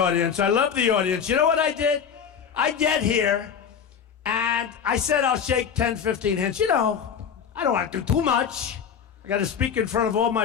I love the audience. You know what I did? I get here, and I said I'll shake 10, 15 hands. You know, I don't want to do too much. I got to speak in front of all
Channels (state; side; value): quieter; right; 7.4 dB